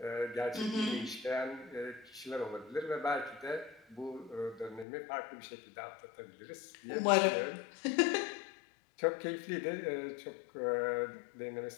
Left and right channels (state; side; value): drops out; right; at 4.9 s